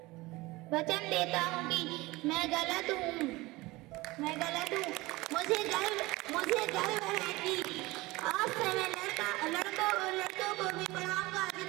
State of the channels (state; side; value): quieter; left; 21.0 dB